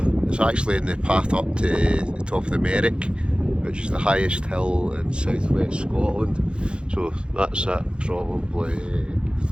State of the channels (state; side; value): late; left; 0.054 ms